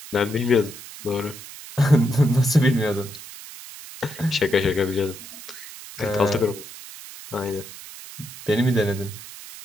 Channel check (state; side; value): noise; right; hiss, 15 dB below the sound